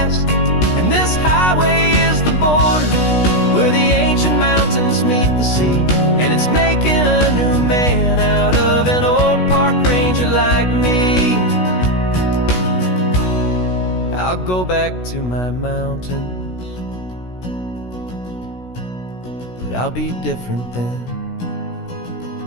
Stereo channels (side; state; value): right; late; 16 ms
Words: And this highway is the border where the ancient mountains meet the sea, and it's making a new man out of an old park ranger like me. I'll go back to my mountains, but I'll be different then,